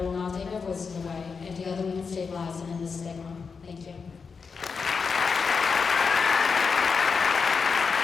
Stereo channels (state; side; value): quieter; right; 5.3 dB